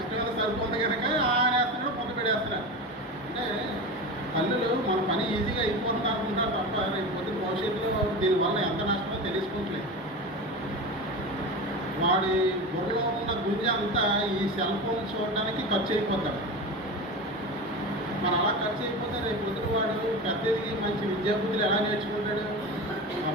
సరిపోతుంది కనుక ఆయన వేస్తున్నాడు, ముద్ద పెట్టేస్తున్నాడు. అంటే తల్లులు మన పని ఈజీగా అయిపోతుంది అనుకుంటారు తప్ప రేపు పొద్దున భవిష్యత్తులో దీనివల్ల ఎంత నష్టమో తెలుసుకోవట్లేదు. వాడి బుర్రలో ఉన్న గుంజ అంతా ఈ సెల్ ఫోన్ చూడడానికి ఖర్చు అయిపోతాడు. మరి అలా ఖర్చు అయిపోతే రేపు పొద్దున వాడు పెద్దదికి మంచి విద్యాబుద్ధులు ఎలా నేర్చుకుంటాడు? ఆ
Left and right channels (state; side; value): normal; both; correlation 0.26